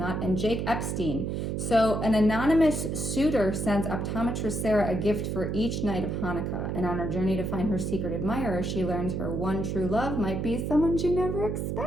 And Jake Epstein. So an anonymous suitor sends optometrist Sarah a gift for each night of Hanukkah. And on her journey to find her secret admirer, she learns her one true love might be someone she never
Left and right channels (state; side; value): noise; right; hum, 2 dB below the sound